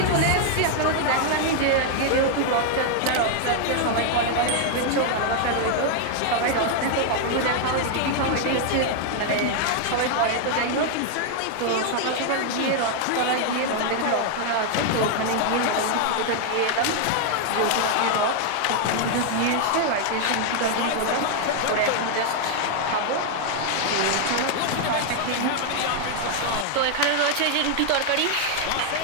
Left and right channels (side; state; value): both; different; correlation 0.00